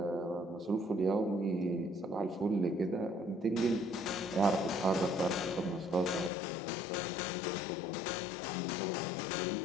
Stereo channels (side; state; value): right; drops out; at 6.3 s